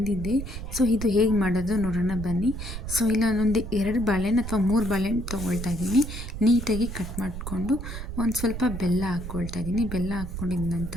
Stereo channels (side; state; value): right; noise; rumble, 7 dB below the sound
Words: ಇದು ಹೇಗೆ ಮಾಡೋದು ನೋಡೋಣ ಬನ್ನಿ. ಇಲ್ಲ ನಾನೊಂದು 2 ಬಾಳೆಹಣ್ಣು ಅಥವಾ 3 ಬಾಳೆಹಣ್ಣು ತೊಗೊಳ್ತಾ ಇದ್ದೀನಿ. ನೀಟಾಗಿ ಕಟ್ ಮಾಡಿಕೊಂಡು ಒಂದು ಸ್ವಲ್ಪ ಬೆಲ್ಲ ಹಾಕ್ಕೊಳ್ತಾ ಇದ್ದೀನಿ. ಬೆಲ್ಲ ಹಾಕ್ಕೊಂಡಿದ